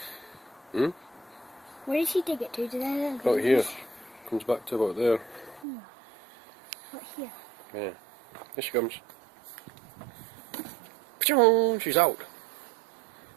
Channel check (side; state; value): left; drops out; at 5.7 s